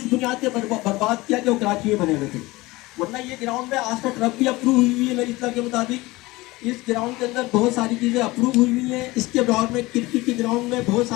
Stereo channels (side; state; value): right; quieter; 20.7 dB